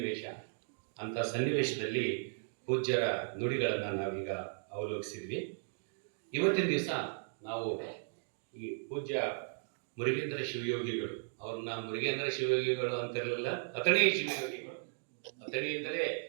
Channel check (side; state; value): left; silent; digital silence